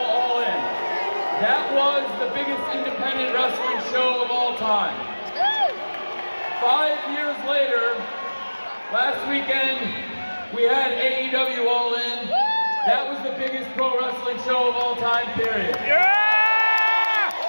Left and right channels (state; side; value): inverted; both; correlation -1.00